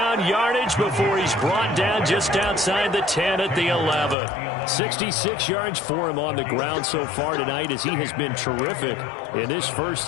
yardage before he's brought down just outside the 10 at the 11. 66 yards for him on the ground so far tonight as he has been terrific in this first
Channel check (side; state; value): right; drops out; at 4.2 s